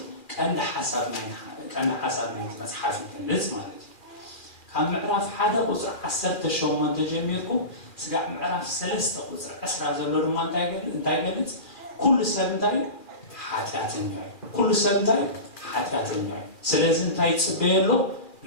ቀንዲ ሓሳብ ናይቲ መፅሓፍ ይገልጽ ማለት እዩ። ካብ ምዕራፍ 1 ቁፅሪ 18 ጀሚርኩም ስጋዕ ምዕራፍ 3 ቁፅሪ 20 ዘሎ ድማ እንታይ ይገልጽ? ኩሉ ሰብ እንታይ ሓጢአተኛ እዩ። ኩሉ ሰብ እንታይ ሓጢአተኛ እዩ። ስለዚ እንታይ ይጽበየሎ?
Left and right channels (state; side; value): late; right; 2.4 ms